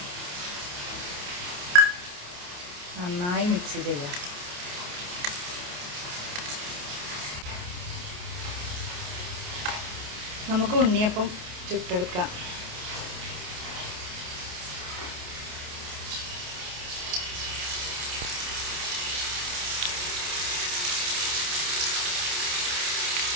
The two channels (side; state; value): left; late; 28 ms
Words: നന്നായി മിക്സ് ചെയ്യാം. നമുക്ക് ഉണ്ണിയപ്പം ചുട്ടെടുക്കാം.